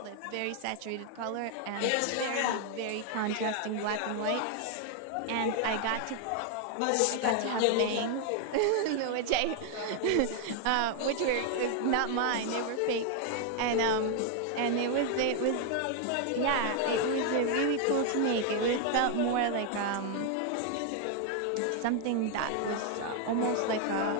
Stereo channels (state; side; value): different; both; correlation 0.00